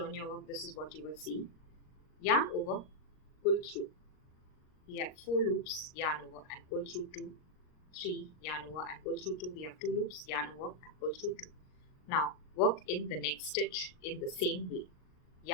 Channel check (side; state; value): right; late; 38 ms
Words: your work, this is what you will see. Yarn over, pull through. We have 4 loops, yarn over and pull through 2. 3, yarn over and pull through 2. We have 2 loops, yarn over and pull through 2. Now work in the next stitch in the same way.